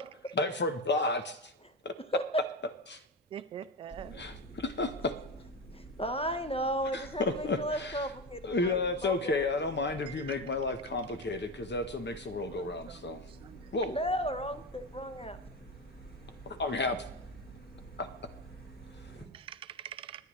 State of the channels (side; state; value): both; normal; correlation 0.19